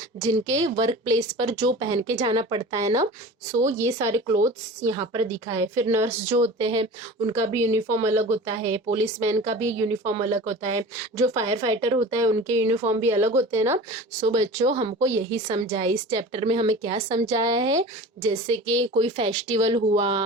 जिनके वर्क प्लेस पर जो पहन के जाना पड़ता है ना। सो ये सारे क्लोथ्स यहाँ पर दिखा है। फिर नर्स जो होते हैं उनका भी यूनिफॉर्म अलग होता है, पुलिसमैन का भी यूनिफॉर्म अलग होता है, जो फायर फाइटर होता है उनके यूनिफॉर्म भी अलग होते हैं ना। सो बच्चों हमको यही समझाया, इस चैप्टर में हमें क्या समझाया है, जैसे कि कोई फेस्टिवल हुआ,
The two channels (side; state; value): both; normal; correlation 0.36